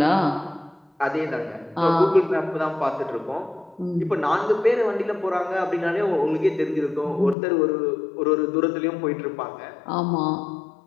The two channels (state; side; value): drops out; right; at 7.4 s